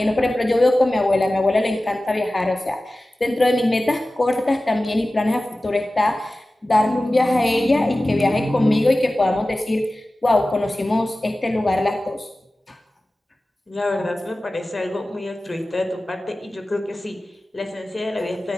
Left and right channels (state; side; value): normal; both; correlation 0.96